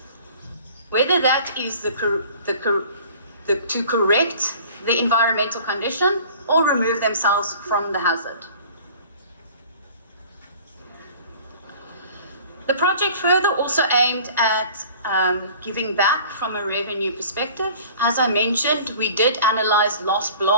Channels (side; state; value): both; inverted; correlation -0.47